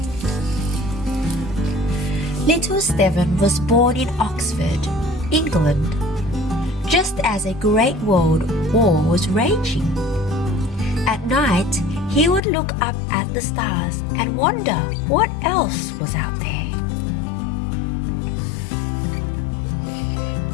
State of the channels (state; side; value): drops out; right; at 12.4 s